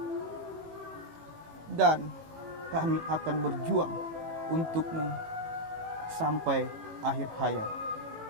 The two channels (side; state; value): left; late; 18 ms